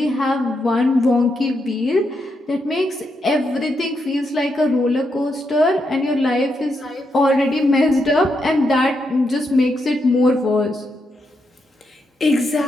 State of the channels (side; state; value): both; normal; correlation 0.82